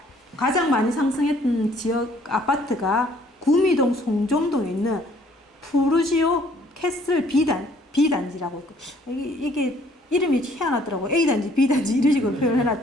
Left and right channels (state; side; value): normal; both; correlation 0.60